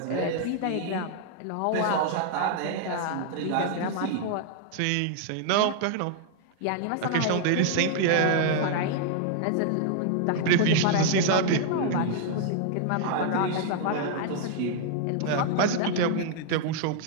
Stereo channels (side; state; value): both; different; correlation 0.00